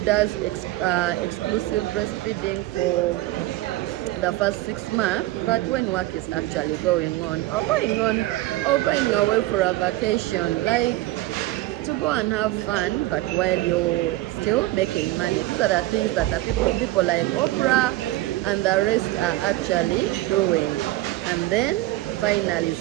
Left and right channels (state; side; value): quieter; left; 17.5 dB